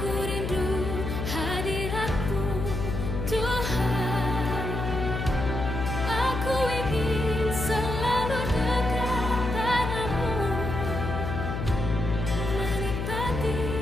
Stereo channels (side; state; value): left; noise; hum, 3 dB below the sound